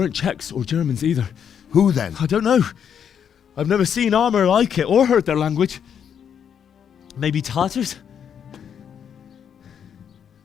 Czechs or Germans either. Who then? I don't know. I've never seen armor like it or heard their language. Maybe Tatars?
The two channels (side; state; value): right; quieter; 8.1 dB